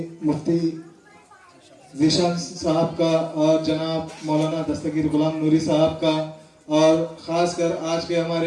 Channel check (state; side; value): identical; both; correlation 1.00